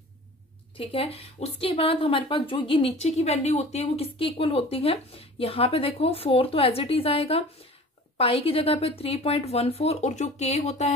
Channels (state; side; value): normal; both; correlation 0.42